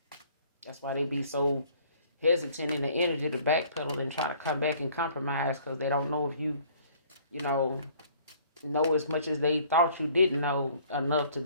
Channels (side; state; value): both; inverted; correlation -0.56